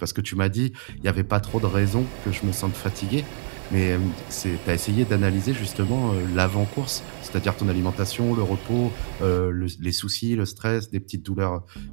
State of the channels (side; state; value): left; silent; digital silence